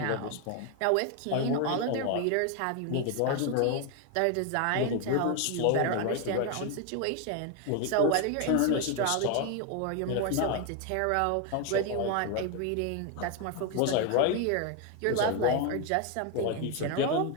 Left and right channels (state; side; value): different; both; correlation 0.01